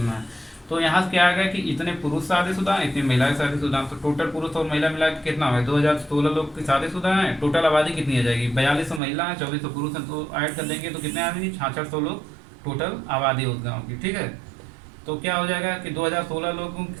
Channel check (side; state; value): left; drops out; at 9.0 s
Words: है। तो यहाँ से क्या आ गया कि इतने पुरुष शादीशुदा हैं, इतनी महिलाएं शादीशुदा हैं। तो टोटल पुरुष और महिला मिला के कितना है? 2016 लोग की शादीशुदा हैं। टोटल आबादी कितनी आ जाएगी? 4200 महिला है, 2400 पुरुष हैं, तो ऐड कर देंगे तो कितने आ जाएंगे? 6600 लोग टोटल आबादी उस गाँव की। ठीक है, तो क्या हो जाएगा कि 2016 लोगों की